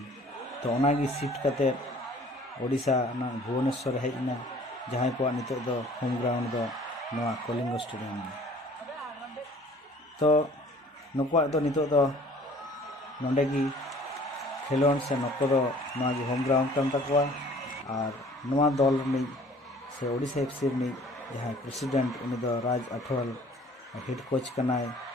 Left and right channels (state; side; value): normal; both; correlation 0.52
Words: तो ओना गी शिफ्ट कते ओडिशा ना भुवनेश्वर हेजना जहां को नितो दो होम ग्राउंड दो नोआ কলিঙ্গ स्टेडियम तो नुकुआ दो नितो दो नोंडे गी खेलोन से नको दो नोआ गी होम ग्राउंड कान तकवा और नोआ दल नि से ओडिशा एफसी नि जहां प्रेसिडेंट उनी दो राज अठवाल हेड कोच कनाय